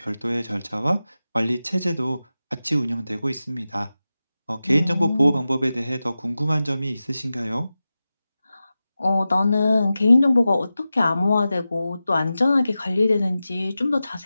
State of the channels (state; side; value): inverted; both; correlation -0.94